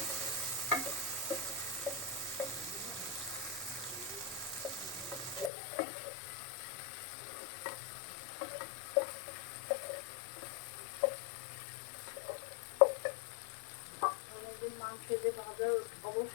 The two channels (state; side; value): drops out; right; at 5.5 s